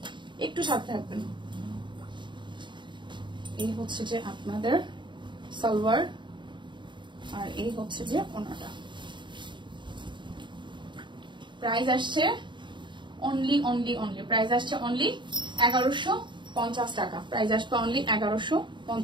একটু সাথে থাকবেন। এই হচ্ছে যে আপনাদের সালোয়ার, আর এই হচ্ছে যে ওনাটা। প্রাইস আসছে অনলি প্রাইস আসছে অনলি 1150 টাকা, প্রাইস আসবে অনলি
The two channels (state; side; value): late; left; 0.23 ms